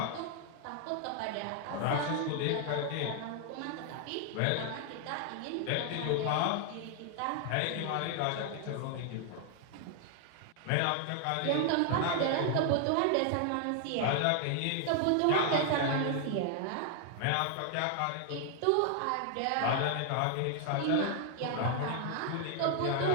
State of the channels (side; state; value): both; different; correlation 0.00